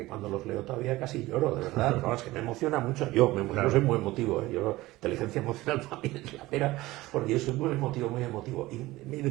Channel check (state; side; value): quieter; left; 18.5 dB